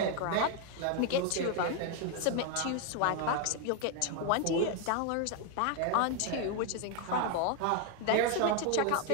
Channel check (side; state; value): both; different; correlation 0.01